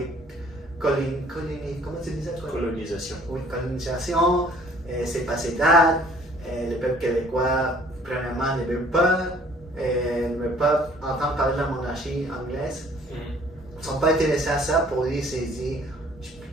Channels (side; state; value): both; normal; correlation 0.56